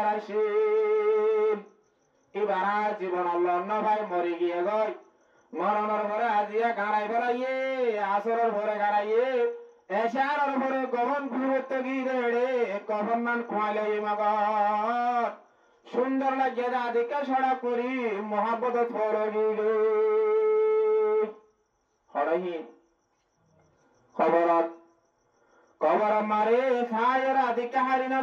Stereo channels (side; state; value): both; identical; correlation 1.00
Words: আসিল এবার জীবন অন্য ভাই মরি গিয়ে গই মরণের পরে আজিয়া গাড়াই বেড়াইয়ে আসরের পরে গাড়াইয়ে এসার পরে গভন ঘুরতে গিয়ে রে কখন মান খোয়াইলে মগর সুন্দর লাগে দাদিকে সড়া করি মহাব্বত ফরগিল হরহীন খবরত খবর মারে খায়ের আদিকে হারিনা